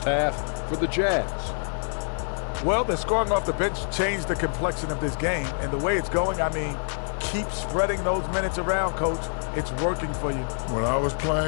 half for the Jazz. Well, the scoring off the bench changed the complexion of this game. And the way it's going, I mean, keep spreading those minutes around, Coach. It's working for you. When I was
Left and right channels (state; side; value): silent; right; digital silence